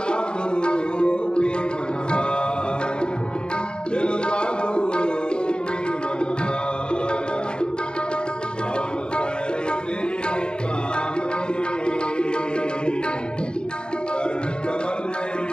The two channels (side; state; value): right; late; 0.050 ms